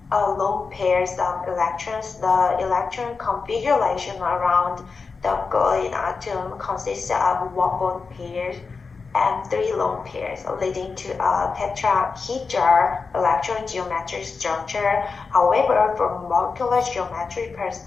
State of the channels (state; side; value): quieter; right; 4.7 dB